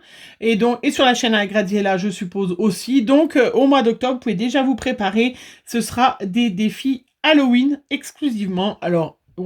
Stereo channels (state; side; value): identical; both; correlation 1.00